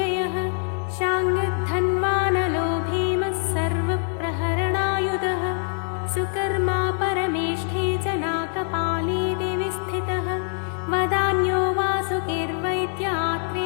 शाङ्गधन्वानलो भीमः सर्वप्रहरणायुधः सुकर्मा परमेष्ठी जनाकपाली दिवि स्थितः वदान्यो वासुकिर्वैद्य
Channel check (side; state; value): right; silent; 55 dB below the other